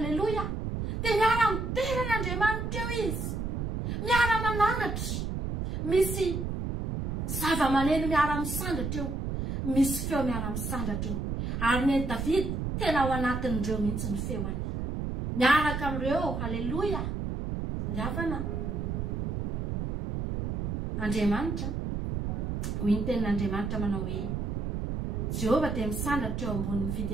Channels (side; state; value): right; noise; rumble, 2 dB below the sound